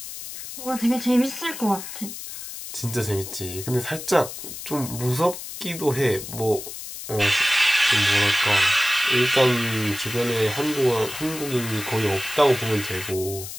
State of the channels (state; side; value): noise; left; hiss, 10 dB below the sound